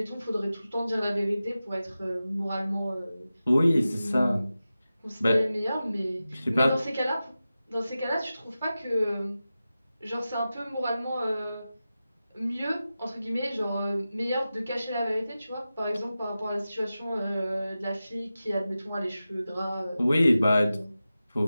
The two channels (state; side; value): inverted; both; correlation -0.94